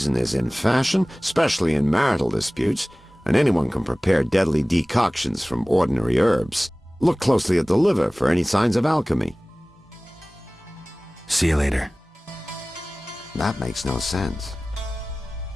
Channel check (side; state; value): both; normal; correlation 0.98